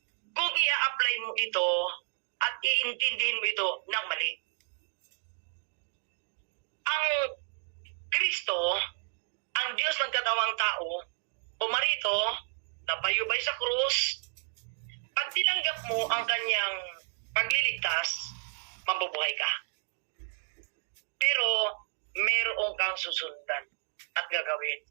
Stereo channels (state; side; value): silent; left; 57 dB below the other